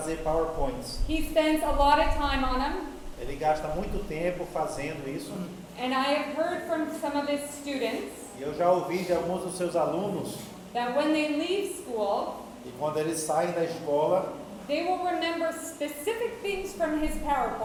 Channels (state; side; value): identical; both; correlation 1.00